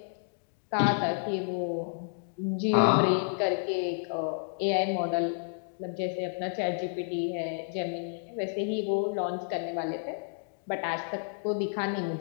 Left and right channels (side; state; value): right; silent; digital silence